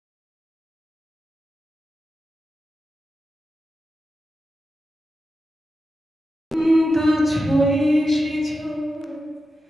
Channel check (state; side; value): normal; both; correlation 0.90